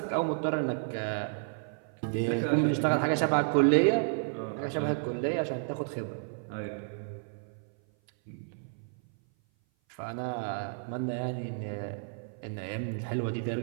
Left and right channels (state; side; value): silent; left; 56 dB below the other